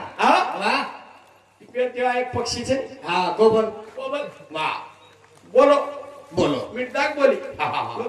हा वा तेव्हा एक पक्षीचे हा कोबल बोल वा बोलो बोलो मिठाक बोली हा, हा, हा.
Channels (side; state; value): both; identical; correlation 1.00